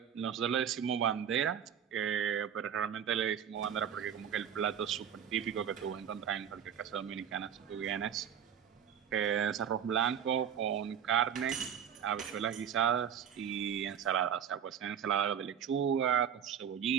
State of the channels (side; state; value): left; quieter; 8.5 dB